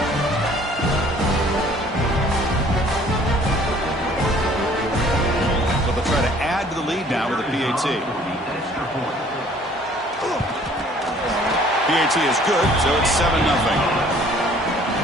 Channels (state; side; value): normal; both; correlation 0.56